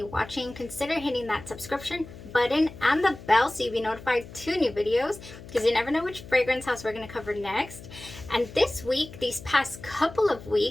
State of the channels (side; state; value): left; noise; hum, 16 dB below the sound